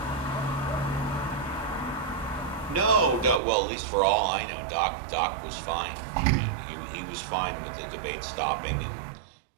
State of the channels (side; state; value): left; drops out; at 3.4 s